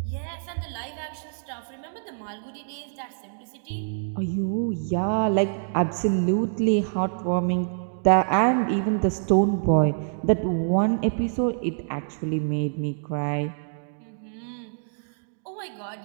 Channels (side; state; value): left; silent; digital silence